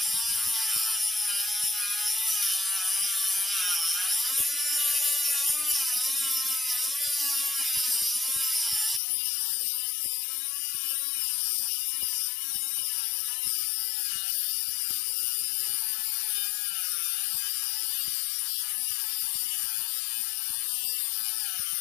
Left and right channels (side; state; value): right; drops out; at 9.0 s